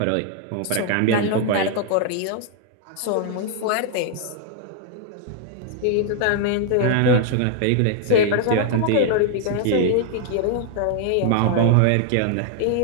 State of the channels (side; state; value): both; different; correlation -0.01